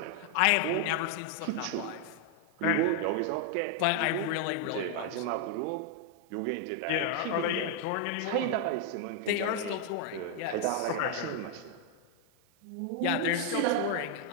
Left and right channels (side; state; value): both; different; correlation 0.00